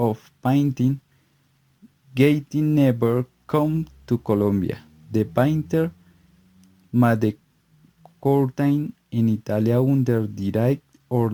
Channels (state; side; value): identical; both; correlation 1.00